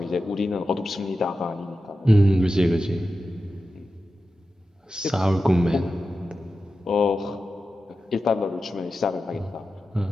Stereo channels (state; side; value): normal; both; correlation 0.92